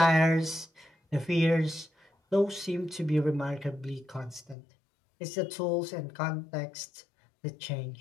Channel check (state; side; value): drops out; right; at 4.5 s